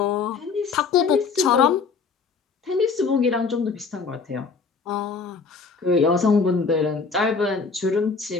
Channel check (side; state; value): right; quieter; 5.0 dB